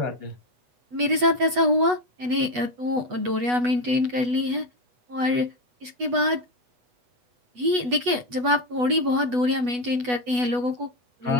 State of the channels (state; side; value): late; left; 8.1 ms